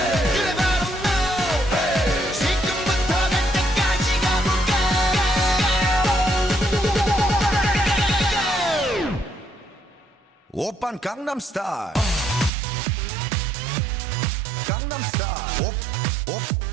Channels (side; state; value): left; drops out; at 12.5 s